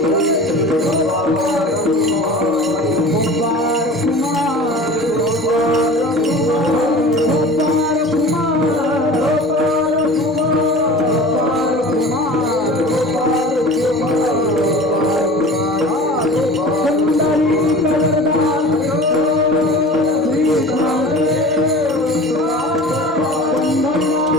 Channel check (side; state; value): both; normal; correlation 0.39